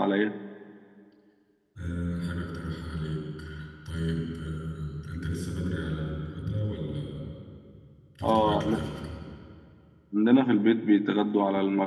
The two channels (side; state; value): both; identical; correlation 1.00